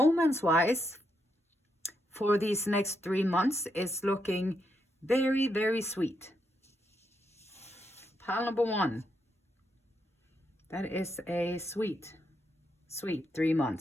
for these next 3 months, is looking very, very sweet. Pile number 1. That is a sweet 3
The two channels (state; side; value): normal; both; correlation 0.80